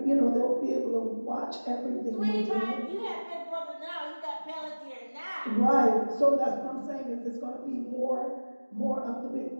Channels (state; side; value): inverted; both; correlation -1.00